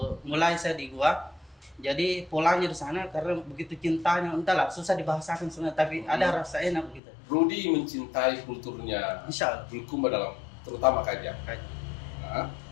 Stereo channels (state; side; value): drops out; right; at 7.0 s